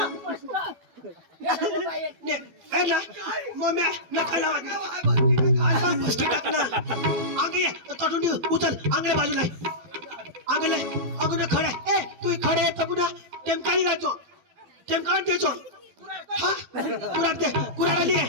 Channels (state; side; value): late; left; 12 ms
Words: उचल आंगल्या बाजूला आंगले अगोदर खडे ए तू खडे पुन्हा टेमकाळी राहतो टेमकाळ द्यायचो हा कुराड दे कुराड आली